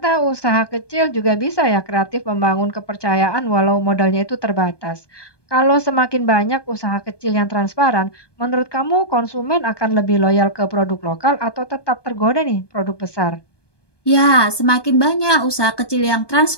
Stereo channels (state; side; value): late; right; 1.2 ms